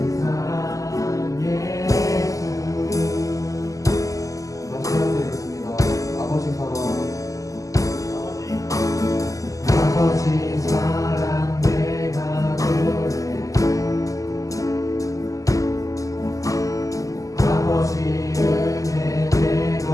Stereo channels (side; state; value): right; late; 0.16 ms